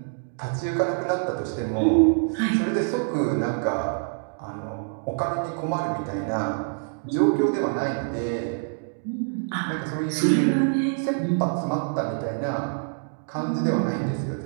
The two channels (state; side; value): silent; left; 61 dB below the other